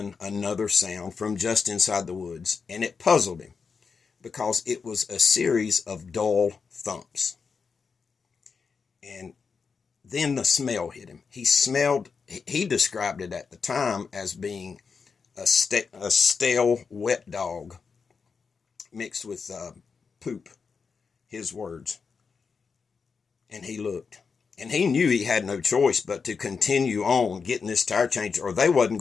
another sound from just inside the woods, and it puzzled him because it was a series of dull thumps. And then the smell hit him. He described it at the time as being a stale, wet dog mixed with poop, his words. And he looked. And he knew he had no choice but to continue on getting this tire changed, or they wasn't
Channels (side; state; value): right; quieter; 5.4 dB